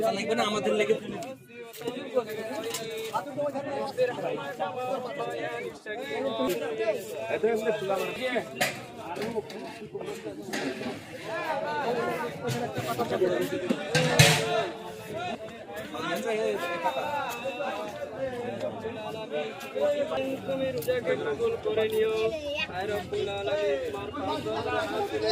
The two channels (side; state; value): both; identical; correlation 1.00